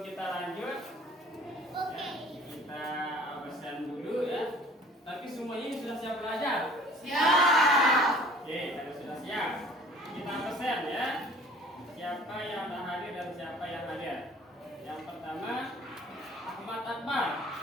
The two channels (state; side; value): normal; both; correlation 0.50